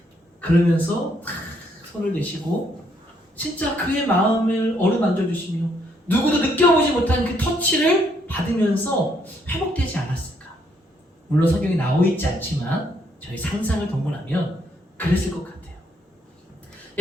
그러면서 손을 대시고 진짜 그의 마음을 어루만져 주시며 누구도 느껴보지 못한 그 터치를 받으면서 회복되지 않았을까? 물론 성경에 나와 있지 않지만 저희 상상을 동원하면 그랬을 것 같아요.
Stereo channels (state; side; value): normal; both; correlation 0.71